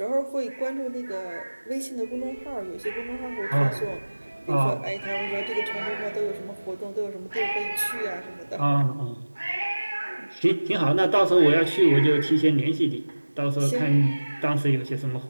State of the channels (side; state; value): both; inverted; correlation -1.00